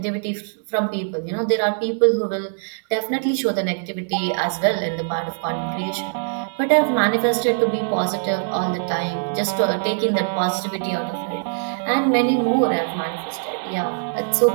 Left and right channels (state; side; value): silent; left; digital silence